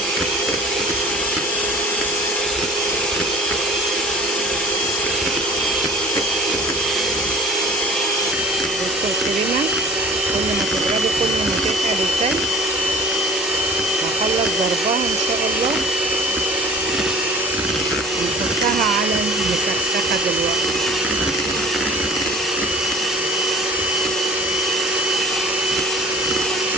الكريمه كل ما تضربي كل ما تتقل التلج. هخلص ضربها ان شاء الله ونحطها على المسخسخه دلوقتي.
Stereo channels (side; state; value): both; normal; correlation 0.45